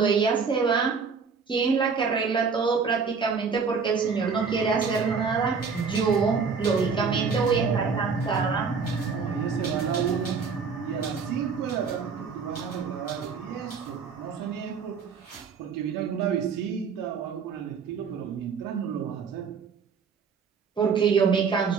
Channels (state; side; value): quieter; left; 5.5 dB